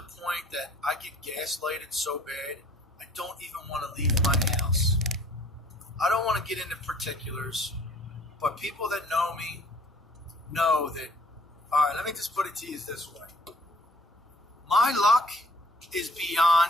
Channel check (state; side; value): normal; both; correlation 0.56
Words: point that I get gaslighted so bad, I don't even want to leave my house. I don't want to get into particulars, but people that know me know that, all right, let me just put it to you this way. My luck is